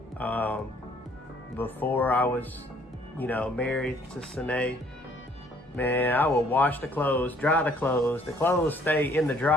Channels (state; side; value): normal; both; correlation 0.61